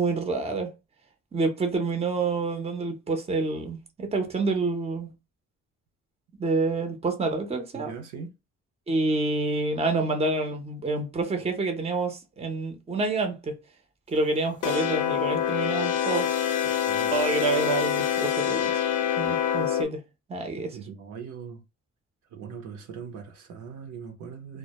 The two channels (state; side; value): normal; both; correlation 0.20